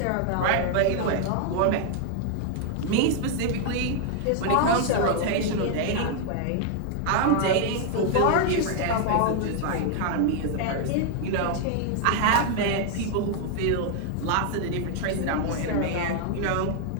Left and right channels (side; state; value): both; different; correlation 0.00